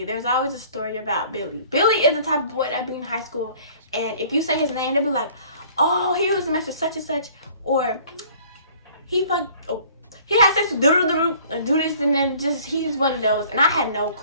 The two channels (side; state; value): both; inverted; correlation -0.53